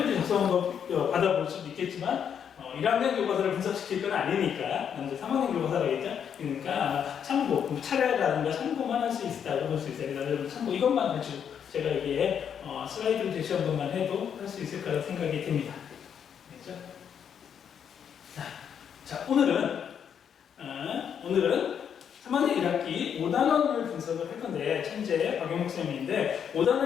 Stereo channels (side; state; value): right; quieter; 8.1 dB